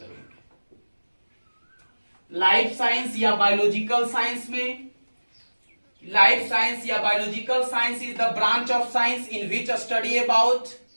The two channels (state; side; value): inverted; both; correlation -1.00